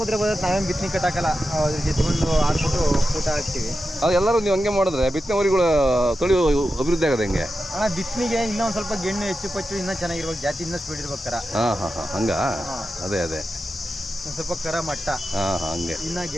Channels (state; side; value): normal; both; correlation 0.90